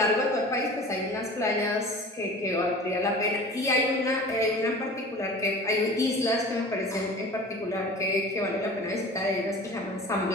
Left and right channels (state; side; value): normal; both; correlation 0.39